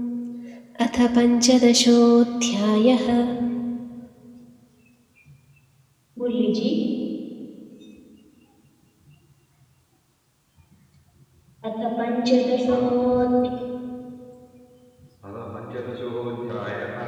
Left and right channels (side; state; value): both; identical; correlation 1.00